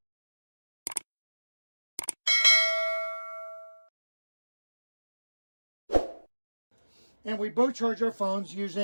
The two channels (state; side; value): inverted; both; correlation -1.00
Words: And we both charge our phones